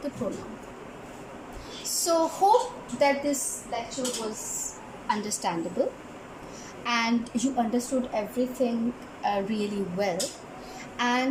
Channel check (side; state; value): both; identical; correlation 1.00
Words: the pronoun. So hope that this lecture was understandable and you understood everything really well.